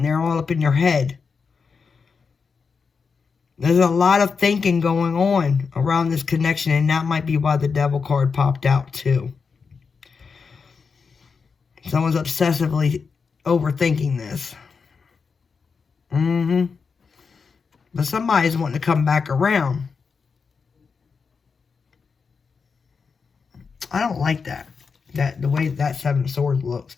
They're all up in your head. There's a lot of thinking going on around this connection, and that might be why the Devil card popped out too. Someone's obsessively overthinking this. But somebody's wanting to come back around. I don't like that. The way that Seven of Swords looks.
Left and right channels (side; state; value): right; quieter; 5.3 dB